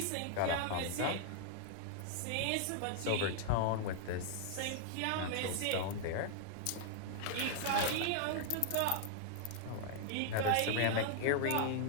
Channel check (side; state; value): both; different; correlation 0.00